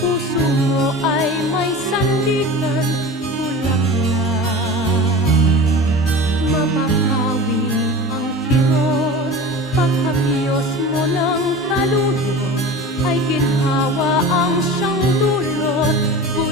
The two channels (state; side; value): normal; both; correlation 0.34